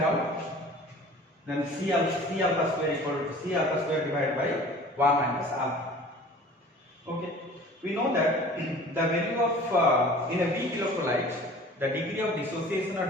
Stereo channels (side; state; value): both; normal; correlation 0.45